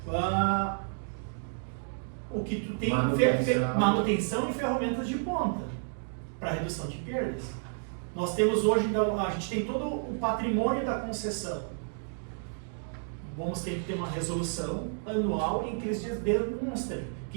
o que tu tem manutenção e ferramentas de ponta para redução de perdas. Nós temos hoje, a gente tem todo o patrimônio da concessão. Vamos ter que ter uma resolução anual em que eles demonstrem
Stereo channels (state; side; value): silent; left; digital silence